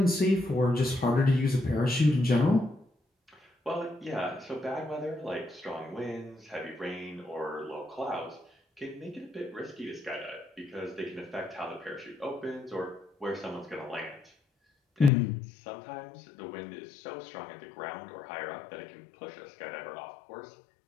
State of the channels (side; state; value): right; drops out; at 15.1 s